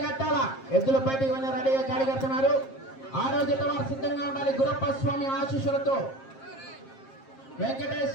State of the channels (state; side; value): late; right; 7.5 ms